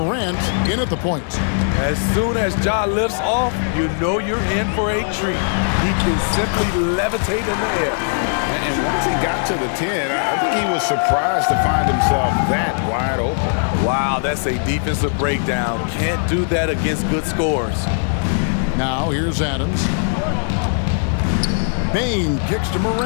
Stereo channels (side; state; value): right; silent; digital silence